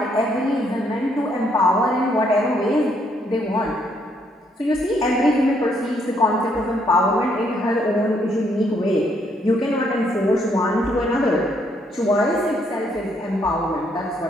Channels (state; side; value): normal; both; correlation 0.71